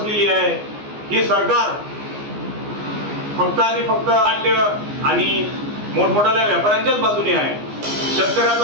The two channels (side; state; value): left; late; 14 ms